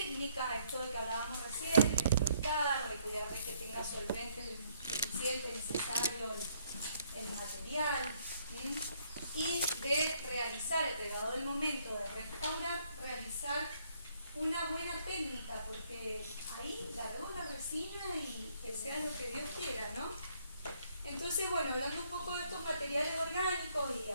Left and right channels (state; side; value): inverted; both; correlation -0.67